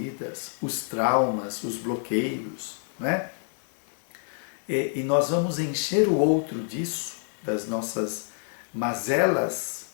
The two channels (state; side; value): silent; right; digital silence